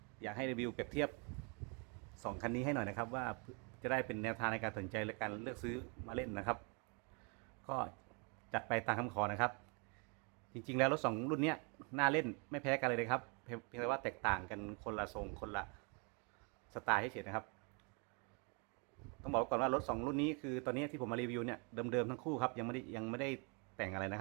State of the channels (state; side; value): quieter; left; 34.5 dB